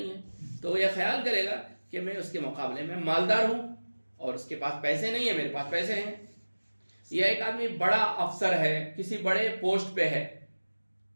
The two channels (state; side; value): inverted; both; correlation -1.00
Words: ہے، تو وہ یہ خیال کرے گا کہ میں اس کے مقابلے میں مالدار ہوں اور اس کے پاس پیسے نہیں ہیں، میرے پاس پیسے ہیں. یا ایک آدمی بڑا افسر ہے، کسی بڑے پوسٹ پہ ہے،